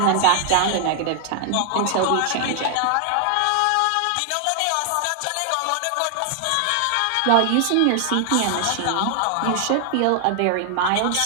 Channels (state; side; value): different; both; correlation 0.00